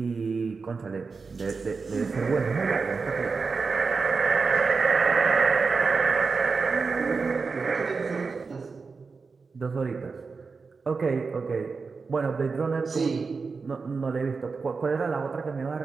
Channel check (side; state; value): left; quieter; 4.7 dB